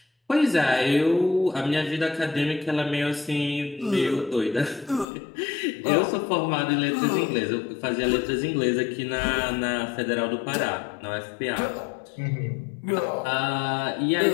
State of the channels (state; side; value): drops out; right; at 5.1 s